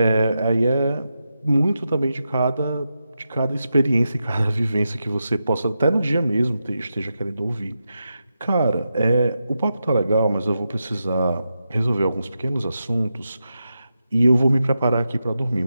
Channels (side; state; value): both; inverted; correlation -0.88